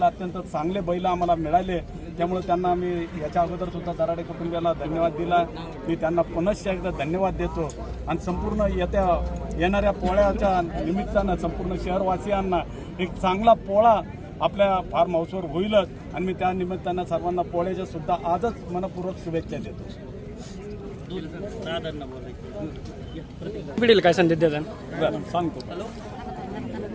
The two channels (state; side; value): identical; both; correlation 1.00